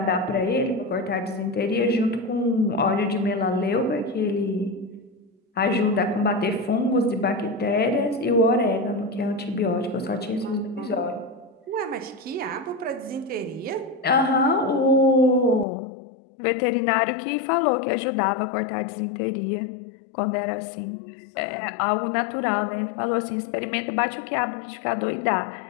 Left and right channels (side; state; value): right; drops out; at 15.7 s